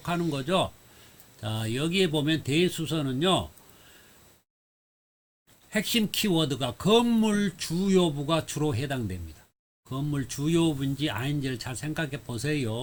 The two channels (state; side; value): identical; both; correlation 1.00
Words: 거죠. 자, 여기에 보면 대수선은요. 핵심 키워드가 건물 주요부가 주로 해당됩니다. 건물 주요부인지 아닌지를 잘 생각해